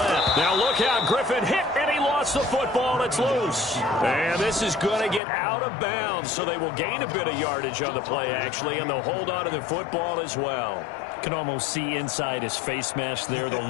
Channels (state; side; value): drops out; right; at 5.2 s